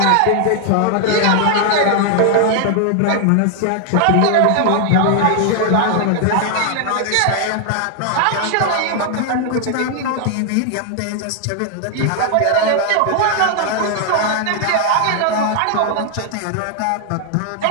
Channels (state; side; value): different; both; correlation 0.00